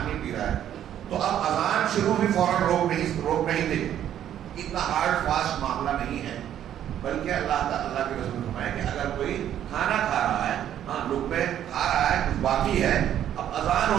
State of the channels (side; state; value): left; quieter; 10.7 dB